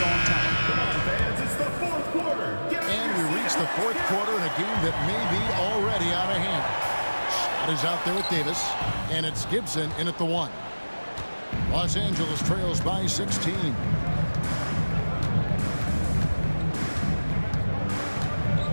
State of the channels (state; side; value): inverted; both; correlation -1.00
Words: on time. Come on, fans, it's the fourth quarter. And we reach the fourth quarter in a game that may be already out of hand. Shot is out there with Davis, and it's Gibson in at the 1. Los Angeles trails by 16.